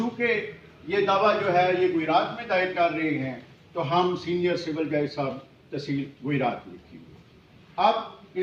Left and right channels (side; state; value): both; identical; correlation 1.00